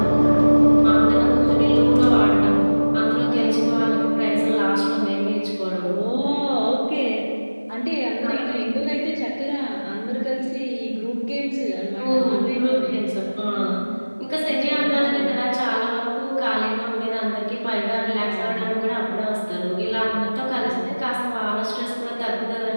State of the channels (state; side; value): inverted; both; correlation -1.00